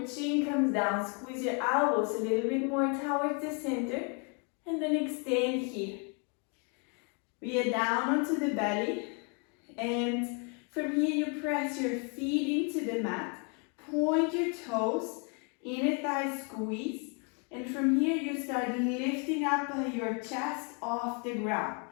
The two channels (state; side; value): quieter; right; 36.5 dB